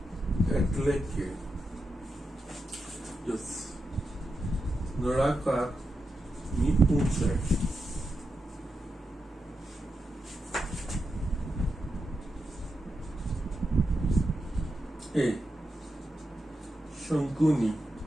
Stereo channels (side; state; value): both; normal; correlation 0.87